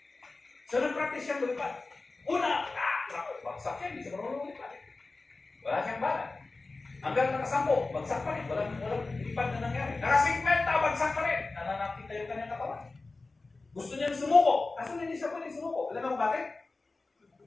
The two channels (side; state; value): right; quieter; 3.5 dB